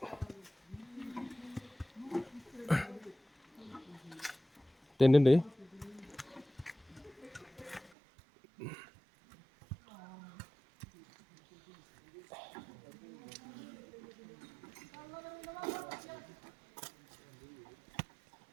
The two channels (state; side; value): drops out; left; at 7.9 s